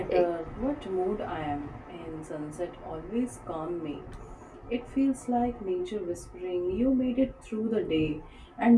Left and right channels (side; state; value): both; identical; correlation 1.00